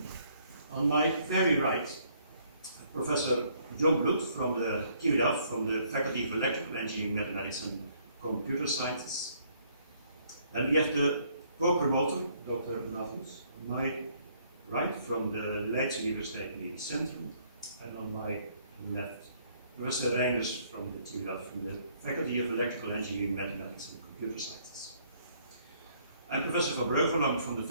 On my very right, Professor John Blood from the TU Delft, from the Faculty of Electrical Engineering, Mathematics and Computer Sciences. And we have the co-promoter, Dr. Navus, on my right, from the right, Universiteit Medisch Centrum, and on my left, Professor Reiners from the TU Delft, from the Faculty of Electrical Engineering, Mathematics and Computer Sciences. I'm Professor Van Breugel, I'm from the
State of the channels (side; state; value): both; inverted; correlation -0.65